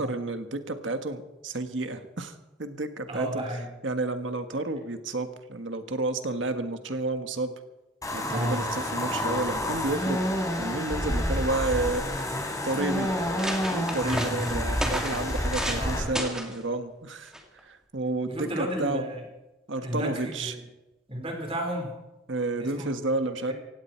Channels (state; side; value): normal; both; correlation 0.39